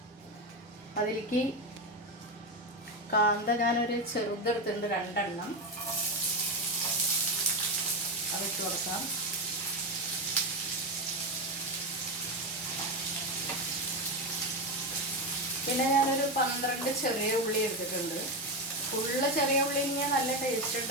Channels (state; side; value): normal; both; correlation 0.14